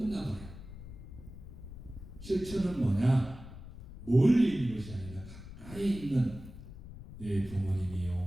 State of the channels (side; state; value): left; noise; rumble, 14 dB below the sound